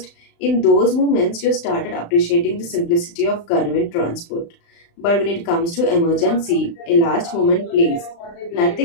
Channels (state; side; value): late; right; 35 ms